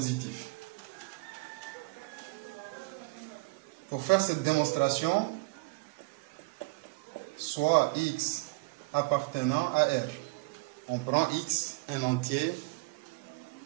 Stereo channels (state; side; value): quieter; left; 26.5 dB